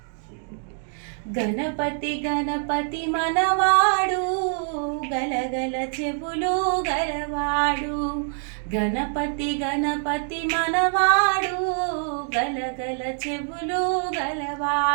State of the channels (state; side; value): silent; left; 57 dB below the other